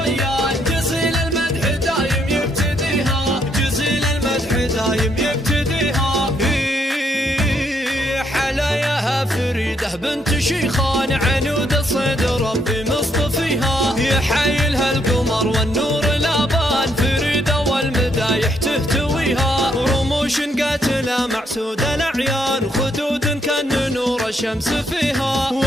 جزيل المدح دايم يبتديها. جزيل المدح دايم يبتديها. حلاياها فريدة بنت شيخان، عنود الصيد ربي مصطفيها. يحايلها القمر والنور الابان، فريدة والمدايح تهتويها. رموش قاتلة معسودة الاعيان، خدود كان نور الشمس فيها.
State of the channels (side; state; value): both; normal; correlation 0.73